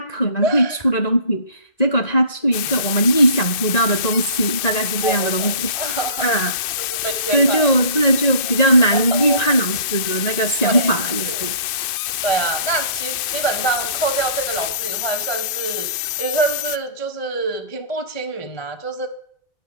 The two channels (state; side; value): late; right; 2.5 ms